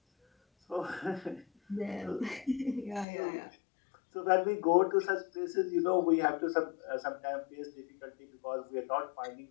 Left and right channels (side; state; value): right; drops out; at 3.1 s